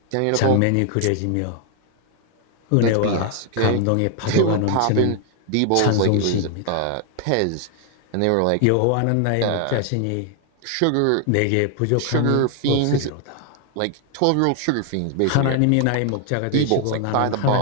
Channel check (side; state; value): both; different; correlation 0.00